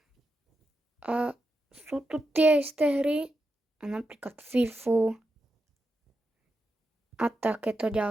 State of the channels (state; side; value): normal; both; correlation 0.87